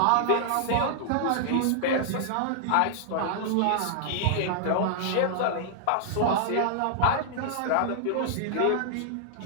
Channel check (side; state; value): both; different; correlation -0.01